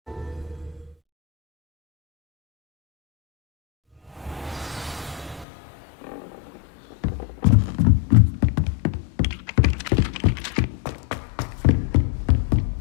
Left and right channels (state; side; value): drops out; right; at 5.5 s